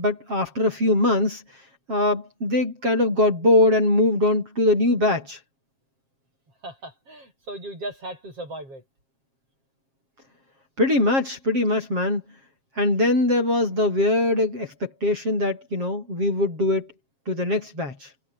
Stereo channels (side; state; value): left; late; 7.5 ms